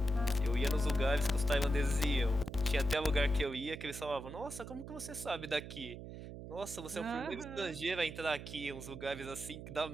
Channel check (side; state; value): right; noise; hum, 10 dB below the sound